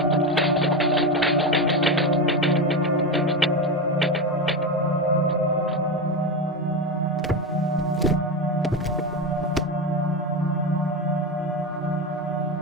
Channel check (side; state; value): both; normal; correlation 0.17